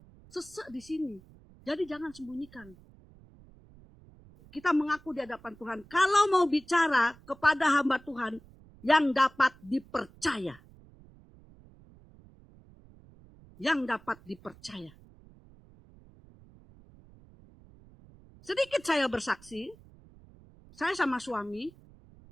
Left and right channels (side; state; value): right; noise; rumble, 24 dB below the sound